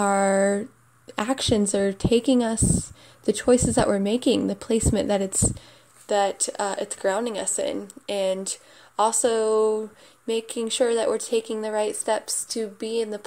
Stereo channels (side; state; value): both; identical; correlation 1.00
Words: actions are taking us, the choices that we're making, the placement that it's grounding us in, and also making sure that we're taking the right steps to be in the